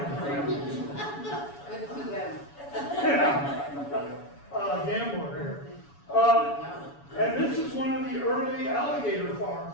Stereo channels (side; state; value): right; late; 7.1 ms